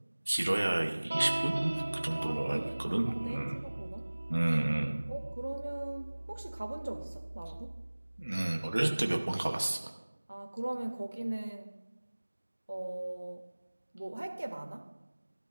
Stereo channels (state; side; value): inverted; both; correlation -1.00